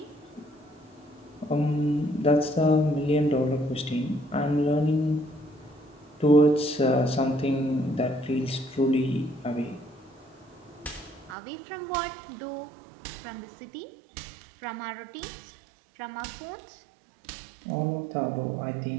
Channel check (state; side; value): drops out; left; at 11.4 s